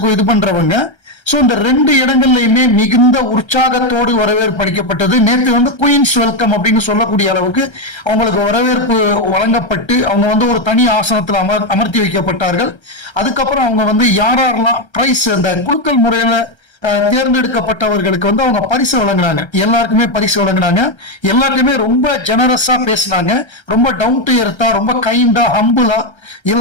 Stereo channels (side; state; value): right; late; 1.3 ms